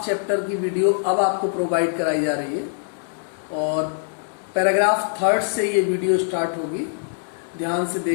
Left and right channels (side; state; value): right; silent; digital silence